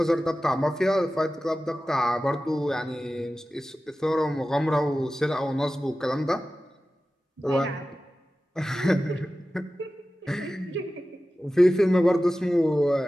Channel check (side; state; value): both; normal; correlation 0.95